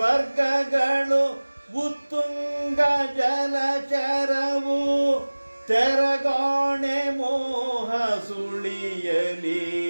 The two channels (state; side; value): inverted; both; correlation -1.00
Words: ಉತ್ತುಂಗ ಜಲಚರವು. ತೆರಗಾಣೆ ಮೋಹ ಸುಳಿಯಲಿ